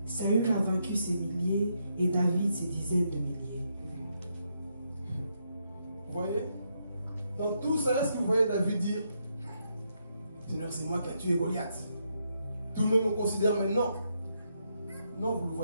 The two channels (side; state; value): both; inverted; correlation -0.79